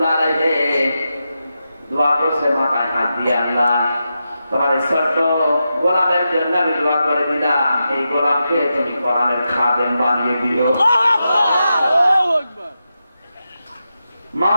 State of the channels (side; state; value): both; inverted; correlation -0.89